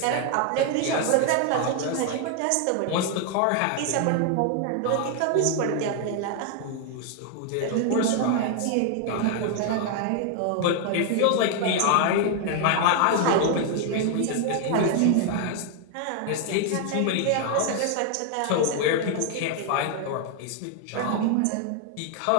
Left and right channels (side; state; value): both; different; correlation 0.00